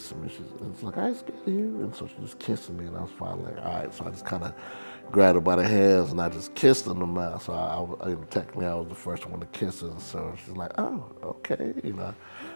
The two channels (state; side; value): inverted; both; correlation -1.00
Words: me. It's like, I ain't scared of you. And so she's just kissing me. And I was finally like, all right. So I just kind of grabbed her by the hands and I just kissed her in the mouth. So technically I was the first one to kiss her. So she's like, oh, okay.